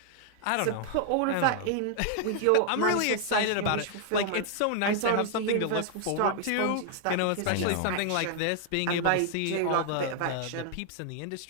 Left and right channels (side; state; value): both; different; correlation 0.00